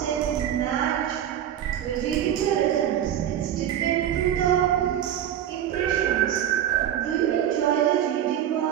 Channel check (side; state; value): left; quieter; 10.7 dB